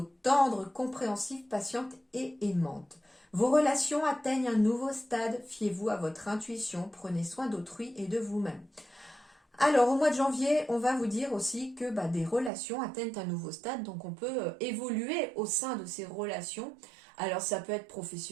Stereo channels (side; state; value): left; drops out; at 12.5 s